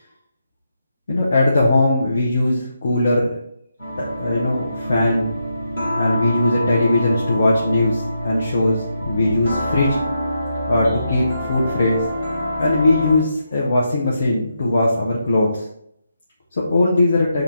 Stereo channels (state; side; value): inverted; both; correlation -0.83